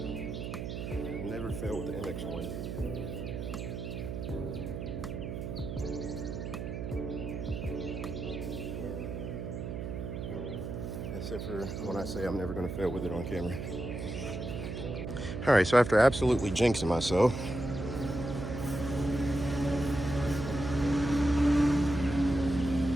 Never fail with the MX1. Except for when I say I'm never gonna fail with it on camera. All right, so after absolutely jinxing myself,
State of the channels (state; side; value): noise; right; hum, 5 dB below the sound